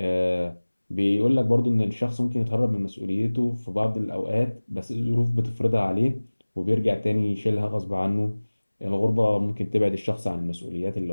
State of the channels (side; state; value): both; inverted; correlation -1.00